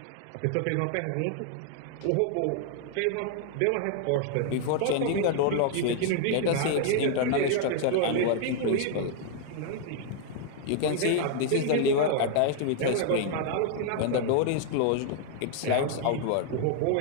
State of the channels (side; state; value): both; different; correlation 0.00